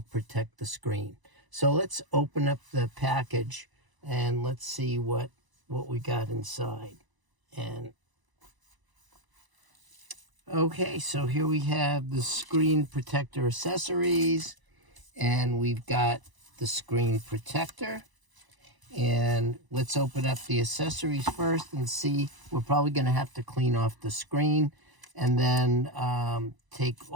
protect the screen. So let's open up the package and let's see what we got inside. And okay, so here we have the screen protector accessories, and we've got the screen protector. And let's open up the accessories first and see. We're probably going to have to clean off the screen and then take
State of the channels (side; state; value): left; late; 1.0 ms